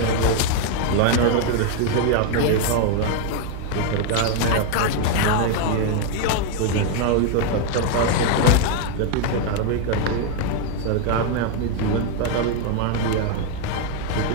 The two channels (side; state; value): both; different; correlation 0.00